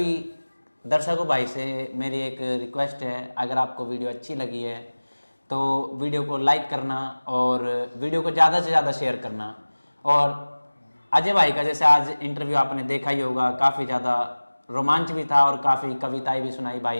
दर्शकों भाई से मेरी एक रिक्वेस्ट है, अगर आपको वीडियो अच्छी लगी है तो वीडियो को लाइक करना और वीडियो को ज़्यादा से ज़्यादा शेयर करना। और अजय भाई का जैसे आज इंटरव्यू आपने देखा ही होगा, काफ़ी ज़्यादा रोमांच भी था और काफ़ी कविताएं भी सुनाई भाई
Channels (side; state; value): both; inverted; correlation -1.00